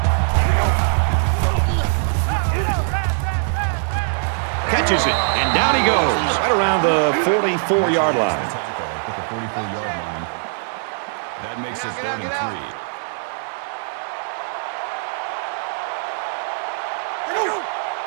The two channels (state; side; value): silent; left; 63 dB below the other